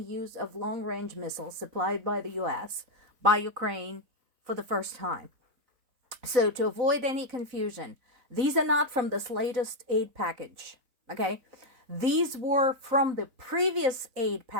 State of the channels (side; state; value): left; late; 3.9 ms